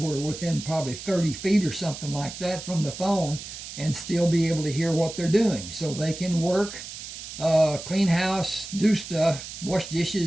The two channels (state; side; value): noise; right; hiss, 11 dB below the sound